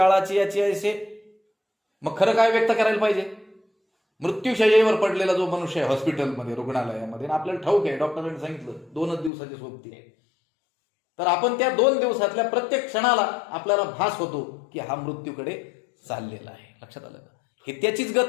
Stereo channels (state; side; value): drops out; right; at 9.3 s